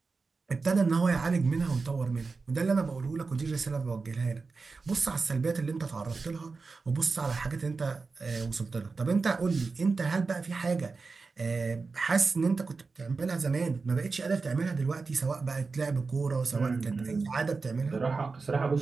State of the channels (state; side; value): quieter; left; 4.3 dB